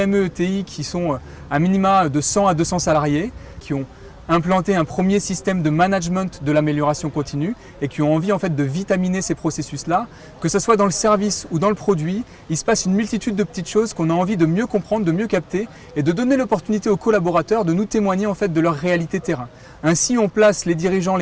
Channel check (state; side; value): identical; both; correlation 1.00